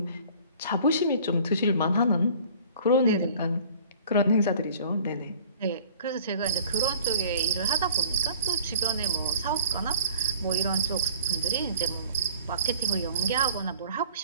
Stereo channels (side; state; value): both; inverted; correlation -0.49